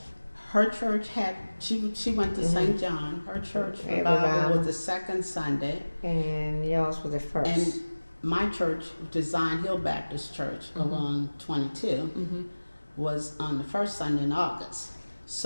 her church had she went to St. John. Her church revival was the second Sunday, And yours was the first. and my church, Design Hill Baptist Church, along 22, was on the first Sunday in August.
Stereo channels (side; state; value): both; inverted; correlation -1.00